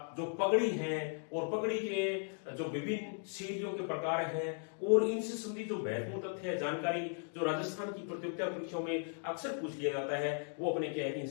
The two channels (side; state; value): right; silent; 53 dB below the other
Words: जो पगड़ी है और पगड़ी के जो विभिन्न शैलियों के प्रकार हैं, और इनसे संबंधित जो महत्वपूर्ण तथ्य है, जानकारी जो राजस्थान की प्रतियोगिता परीक्षाओं में अक्सर पूछ लिया जाता है, वो अपने क्या है कि इन